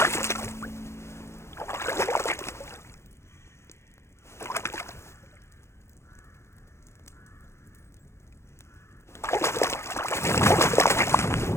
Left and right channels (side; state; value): right; late; 0.13 ms